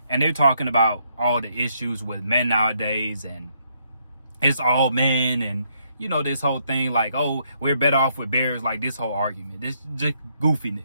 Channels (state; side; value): inverted; both; correlation -0.72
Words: And they're talking about all the issues with men nowadays. And it's all men. And, you know, this whole thing like, oh, we're better off with bears. Like this whole argument. This just